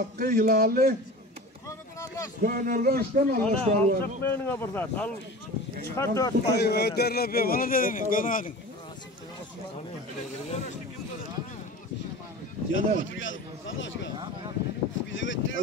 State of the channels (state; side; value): normal; both; correlation 0.35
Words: hilalli. Gönülgönçten Allah aşkına. Sakmayın buradan. Al. Çıkar 4 Ay öderler be bana dedin. Gönadın.